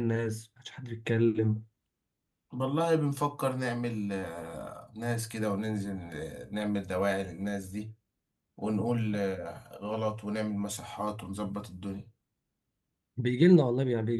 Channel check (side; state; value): both; identical; correlation 1.00